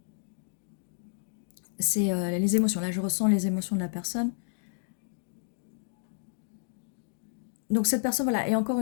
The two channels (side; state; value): right; silent; digital silence